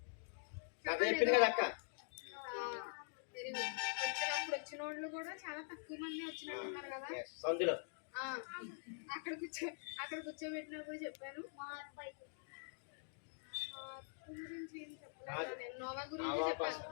వెరీ గుడ్. వచ్చినప్పుడు వచ్చిన వాళ్ళు కూడా చాలా తక్కువ మంది వచ్చినట్టున్నారు కదా. అక్కడ కూర్చోబెట్టినప్పుడు చెప్పాను గురించి ఏం చెప్పలేదు. నేను నోవా గురించి చెప్పాను.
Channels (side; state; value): right; silent; digital silence